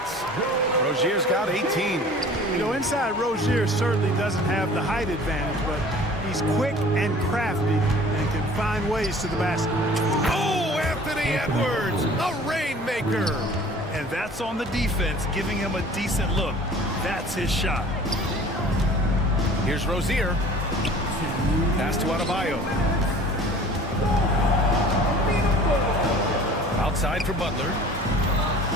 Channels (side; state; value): both; normal; correlation 0.46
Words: Rozier's got 18. You know, inside Rozier certainly doesn't have the height advantage, but he's quick and crafty and can find ways to the basket. Oh, Anthony Edwards, a rainmaker. And that's on the defense, giving him a decent look. That's his shot. Here's Rozier. Pass to Adebayo. Outside for Butler.